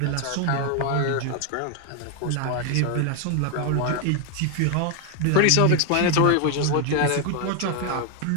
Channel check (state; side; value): different; both; correlation 0.01